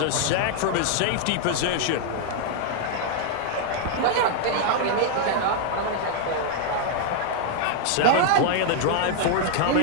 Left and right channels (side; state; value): both; different; correlation -0.01